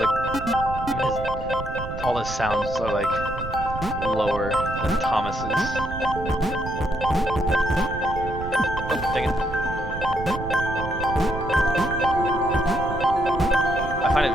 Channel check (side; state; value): right; noise; rumble, 8 dB below the sound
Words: even all his sounds are like lower than Thomas's. Oh, dang it. I find it